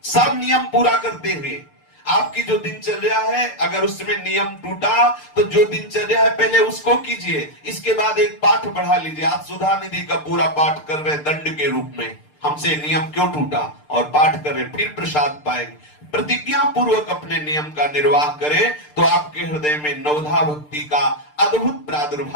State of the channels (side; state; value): right; late; 6.7 ms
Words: सब नियम पूरा करते हुए आपकी जो दिनचर्या है, अगर उसमें नियम टूटा तो जो दिनचर्या है पहले उसको कीजिए, इसके बाद एक पाठ बढ़ा लीजिए। आप सुधा निधि का पूरा पाठ कर रहे दंड के रूप में, हमसे नियम क्यों टूटा, और पाठ कर रहे, फिर प्रसाद पाएंगे। प्रतिज्ञा पूर्वक अपने नियम का निर्वाह करें तो आपके हृदय में नवधा भक्ति का अद्भुत